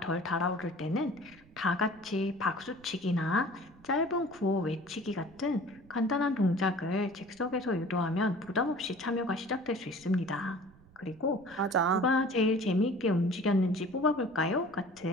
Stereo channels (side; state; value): right; noise; rumble, 26 dB below the sound